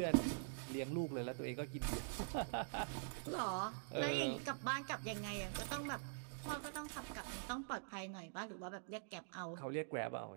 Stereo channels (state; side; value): silent; left; digital silence